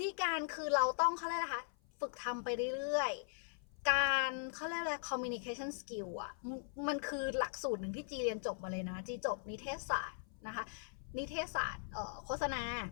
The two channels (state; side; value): silent; right; 51 dB below the other